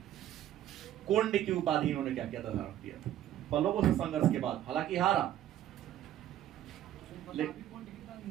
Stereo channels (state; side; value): quieter; left; 12.0 dB